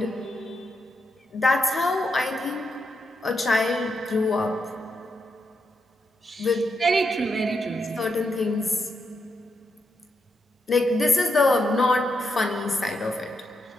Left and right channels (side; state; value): both; normal; correlation 0.82